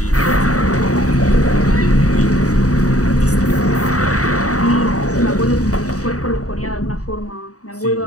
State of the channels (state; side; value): late; right; 0.66 ms